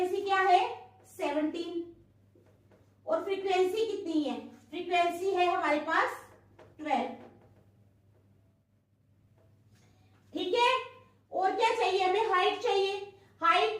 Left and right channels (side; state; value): both; identical; correlation 1.00